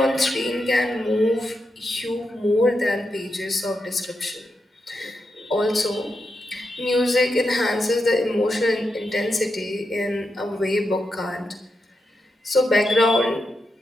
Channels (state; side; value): normal; both; correlation 0.86